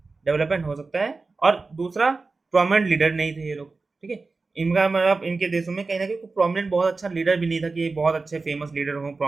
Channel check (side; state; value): left; quieter; 3.9 dB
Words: डेवलपमेंट हो सकता है। और दूसरा, प्रोमिनेंट लीडर नहीं थे ये लोग, ठीक है, इनका मतलब इनके देशों में कहीं ना कहीं प्रोमिनेंट बहुत अच्छा लीडर भी नहीं था कि ये बहुत अच्छे फेमस लीडर हो,